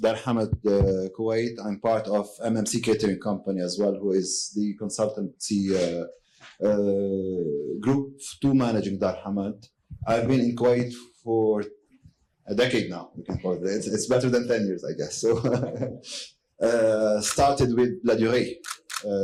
Dar Hamad Kuwait. I'm part of MMC Catering Company as well, who is the consultancy group to managing Dar Hamad. I've been in Kuwait for a decade now, we can call it. It's better than 10 years, I guess. So started with La Durée.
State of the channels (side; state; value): both; identical; correlation 1.00